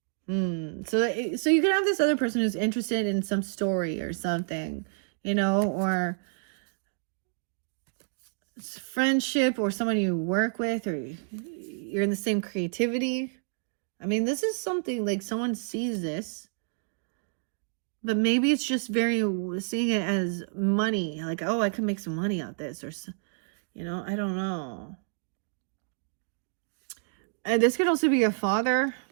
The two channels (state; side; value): silent; left; digital silence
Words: So you can have this other person who's interested in some story or something, you know, or friendship, or someone you work with, or you're in the same creativity. I mean, this is something like someone sees this, but maybe it's just seeing it as money, like, oh, I can make some money out of this, or, you know, I don't know. And this could also be a father,